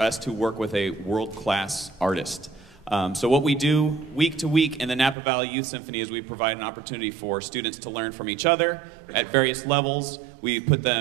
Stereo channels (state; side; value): drops out; left; at 5.2 s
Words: to work with a world-class artist. So what we do week to week in the Napa Valley Youth Symphony is we provide an opportunity for students to learn from each other at various levels. We put